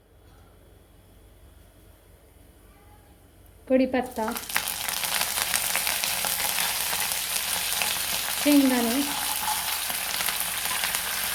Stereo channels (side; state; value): both; identical; correlation 1.00